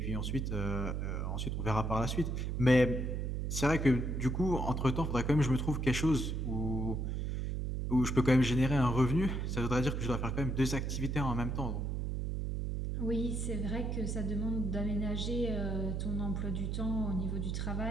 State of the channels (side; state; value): right; noise; hum, 1 dB below the sound